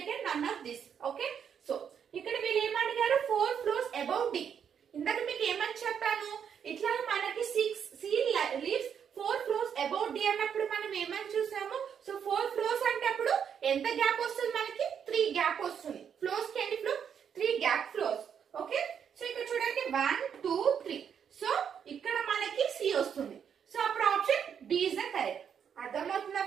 none of this. Okay, so ఇక్కడ వీళ్ళు ఏమడిగారు 4 floors above D. ఇందాక మీకు ఏమని చెప్పాను, ఇట్లా మనకి C leaves 4 floors above D అన్నప్పుడు మనం ఏమని చూసాము. సో 4 floors అంటే అప్పుడు ఎంత గ్యాప్ వస్తుంది మనకి? 3 గ్యాప్ వస్తుంది. ఫ్లోర్స్ కి ఎన్ని floor? 3 gap floors. Okay, so ఇక్కడ చూడండి 1, 2, 3. సో ఇక్కడ మనకి సి వస్తుంది. సో అప్పుడు option B is the correct. అర్థమవుతుందా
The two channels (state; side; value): quieter; left; 7.8 dB